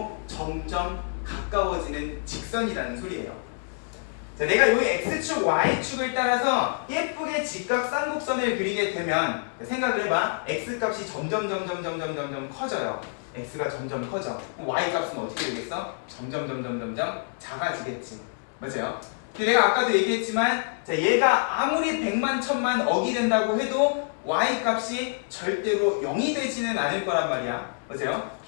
점점 가까워지는 직선이라는 소리예요. 자, 내가 여기 x축, y축을 따라서 예쁘게 직각 쌍곡선을 그리게 되면 생각을 해봐. x값이 점점 커져요. x가 점점 커져. y값은 어떻게 되겠어? 점점 작아지겠지. 맞아요? 근데 내가 아까도 얘기했지만, 자, 얘가 아무리 100만, 1000만 억이 된다고 해도 y값이 절대로 0이 되지는 않을 거란 말이야. 맞아요?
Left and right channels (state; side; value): silent; right; digital silence